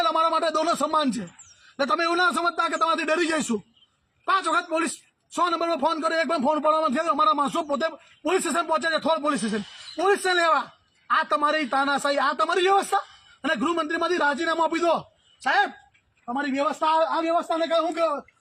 અમારા માટે દોનો સમાન છે. એટલે તમે એવું ના સમજતા કે તમારાથી ડરી જઈશું. 5 વખત પોલીસ 100 નંબર પર ફોન કર્યો, એક પણ ફોન પડવામાં થયો. અમારા માણસો પોતે પોલીસ સ્ટેશન પહોંચે છે, થોડ પોલીસ સ્ટેશન. પોલીસને લેવા આ તમારી તાનાશાહી, આ તમારી વ્યવસ્થા. અને ગૃહમંત્રીમાંથી રાજીનામું આપી દો સાહેબ. તમારી વ્યવસ્થા, આ વ્યવસ્થાને કહે હું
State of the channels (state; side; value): identical; both; correlation 1.00